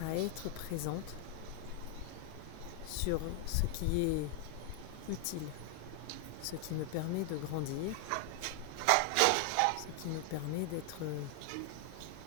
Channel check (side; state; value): both; different; correlation 0.00